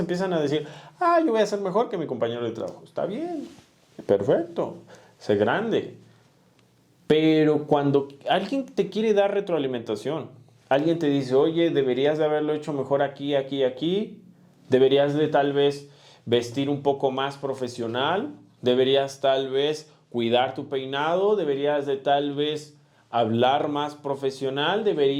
a decir, yo voy a ser mejor que mi compañero de trabajo. Está bien, perfecto, sé grande. Pero cuando alguien te quiere dar retroalimentación, alguien te dice, oye, deberías de haberlo hecho mejor aquí, aquí, aquí, deberías de tal vez vestir un poco más profesional, deberías tal vez cuidar tu peinado, deberías de tal vez hablar más profesional,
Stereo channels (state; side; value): identical; both; correlation 1.00